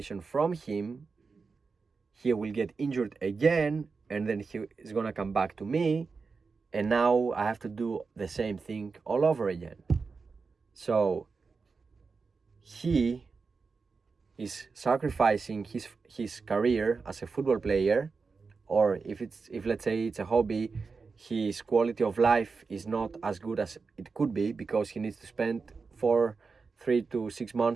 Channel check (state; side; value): quieter; left; 4.7 dB